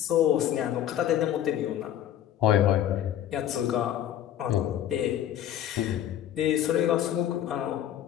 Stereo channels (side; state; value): right; quieter; 11.2 dB